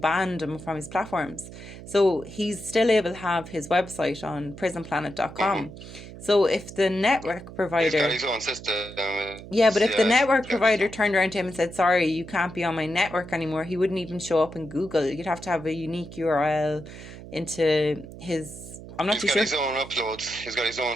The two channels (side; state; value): right; noise; hum, 14 dB below the sound